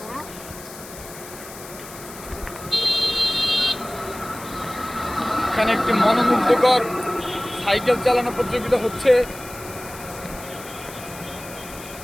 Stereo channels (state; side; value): noise; left; hiss, 15 dB below the sound